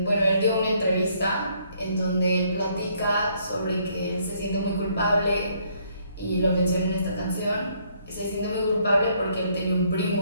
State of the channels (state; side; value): inverted; both; correlation -0.68